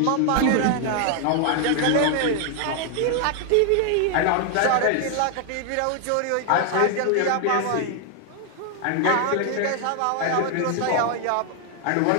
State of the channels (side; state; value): both; different; correlation 0.00